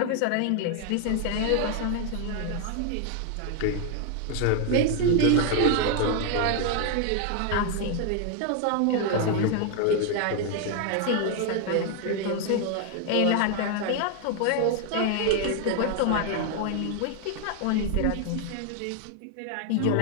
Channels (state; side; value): different; both; correlation 0.00